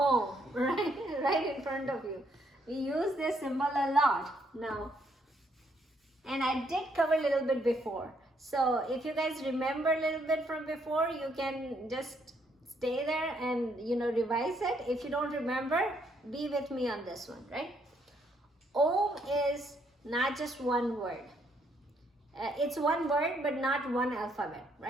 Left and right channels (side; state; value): both; normal; correlation 0.72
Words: right? Right in front of you. We use this symbol a lot now. And I did cover a little bit before. So if you guys remember a little bit from before, you can just stay there and, you know, revise it. If you don't remember, be with me on this one, right? Om is not just one word. It's one word, but not one alphabet,